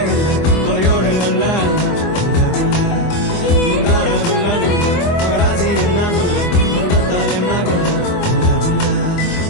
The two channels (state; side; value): late; right; 24 ms